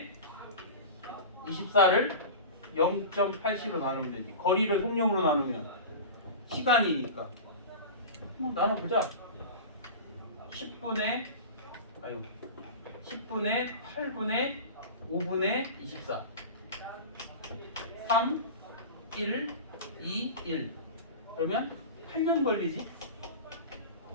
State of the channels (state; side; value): inverted; both; correlation -0.31